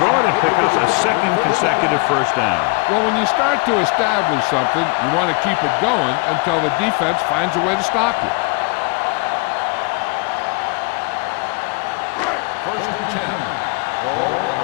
it and pick up a second consecutive first down. Well, when you start to establish something, you want to keep it going until the defense finds a way to stop you. First and 10. Ball on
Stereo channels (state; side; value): quieter; right; 30.8 dB